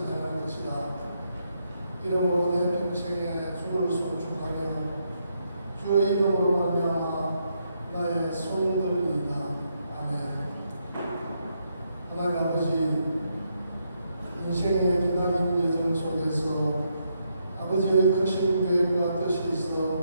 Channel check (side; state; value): both; inverted; correlation -0.78